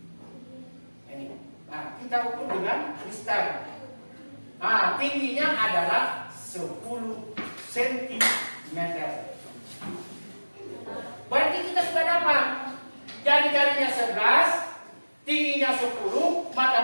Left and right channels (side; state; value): both; inverted; correlation -1.00